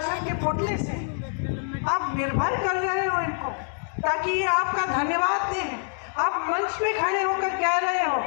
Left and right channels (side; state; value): right; silent; 57 dB below the other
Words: के पोटले से? आप निर्भर कर रहे हो इनको ताकि ये आपका धन्यवाद दें। आप मंच पे खड़े होकर कह रहे हो